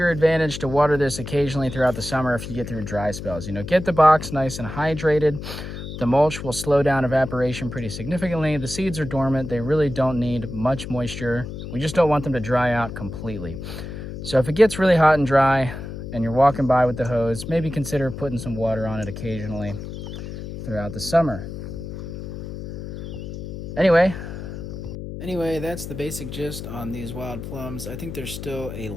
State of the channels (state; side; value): noise; left; hum, 9 dB below the sound